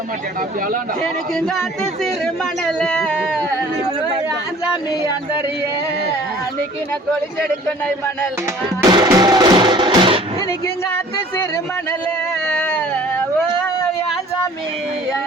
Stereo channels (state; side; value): normal; both; correlation 0.50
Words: எனக்கு காத்து சிறு மணல சாமி அந்தரிய அன்னைக்கு நான் கொலிச்செடுக்க நை மணல் இன்னைக்கு காத்து சிறு மணல் ஓ யான் சாமி